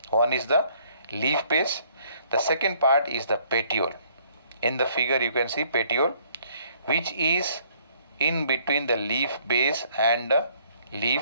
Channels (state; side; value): inverted; both; correlation -0.63